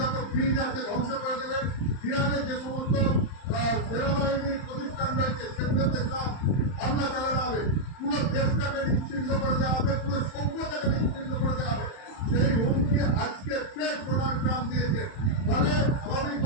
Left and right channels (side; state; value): right; late; 31 ms